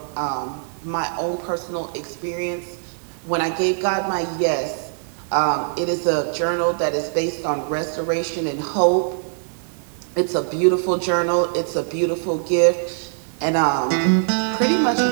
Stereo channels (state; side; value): silent; left; digital silence